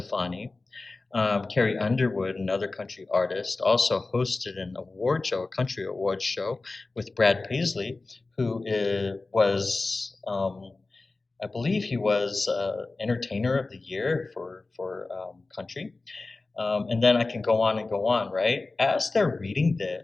Carrie Underwood, another country artist, also hosted an award show, a country award show, with Brad Paisley, who was, I believe, he was Entertainer of the Year for country. And then I can go on and go on, right? As they're reading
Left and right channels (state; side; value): quieter; right; 3.5 dB